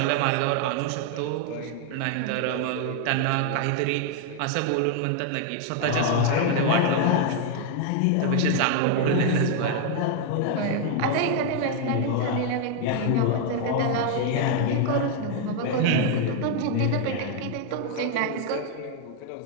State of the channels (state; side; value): different; both; correlation 0.00